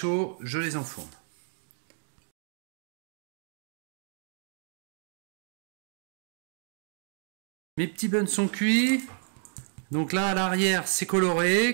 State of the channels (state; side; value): silent; left; 57 dB below the other